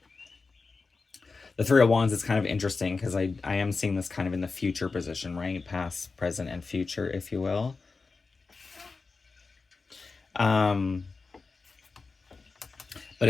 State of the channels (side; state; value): right; quieter; 4.3 dB